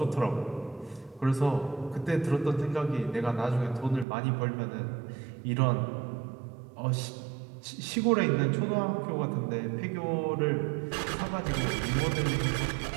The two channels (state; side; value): drops out; left; at 4.0 s